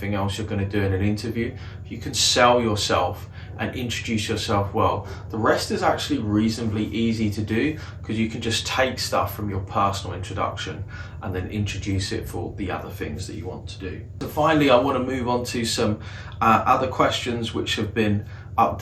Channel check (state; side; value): identical; both; correlation 1.00